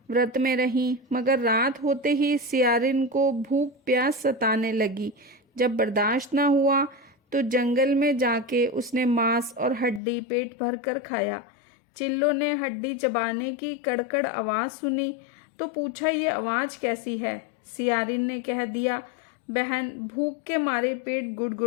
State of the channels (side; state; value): right; drops out; at 10.0 s